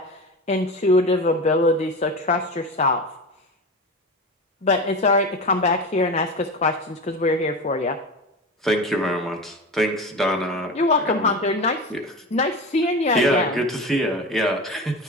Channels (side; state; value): both; normal; correlation 0.27